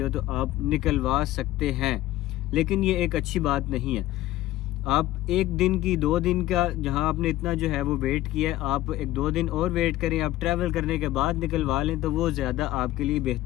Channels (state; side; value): quieter; right; 15.6 dB